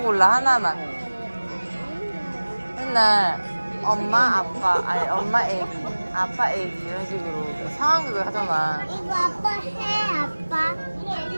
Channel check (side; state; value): both; inverted; correlation -1.00